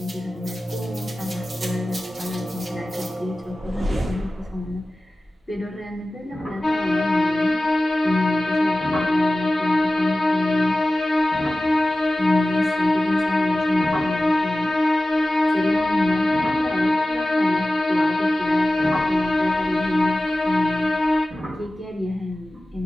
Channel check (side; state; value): both; normal; correlation 0.96